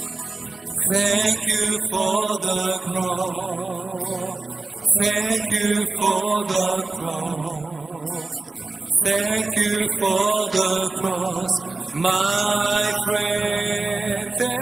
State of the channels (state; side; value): quieter; left; 3.5 dB